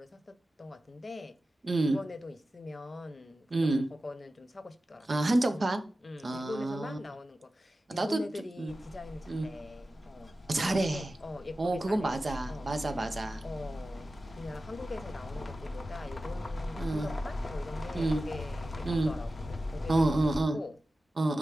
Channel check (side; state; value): both; normal; correlation 0.94